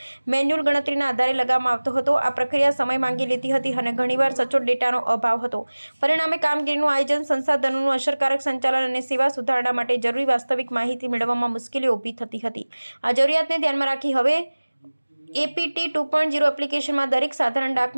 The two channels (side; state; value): both; inverted; correlation -1.00